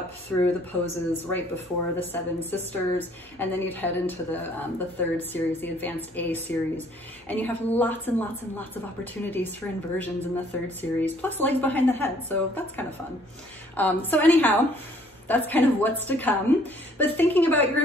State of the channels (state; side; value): normal; both; correlation 0.60